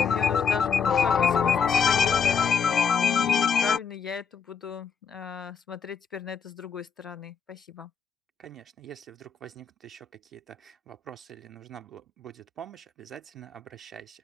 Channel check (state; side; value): quieter; right; 6.5 dB